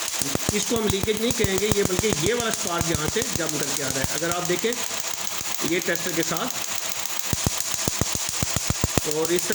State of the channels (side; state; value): both; identical; correlation 1.00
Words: इसको हम लीकेज नहीं कहेंगे ये, बल्कि ये वाला स्पार्क यहाँ से जंप करके आ रहा है। अगर आप देखें ये टेस्टर के साथ, और इस